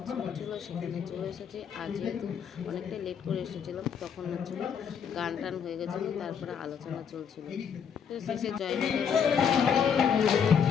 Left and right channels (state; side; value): quieter; right; 7.4 dB